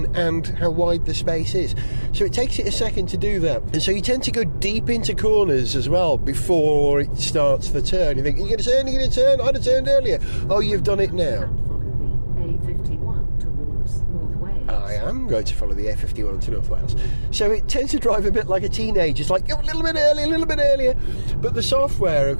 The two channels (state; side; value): inverted; both; correlation -1.00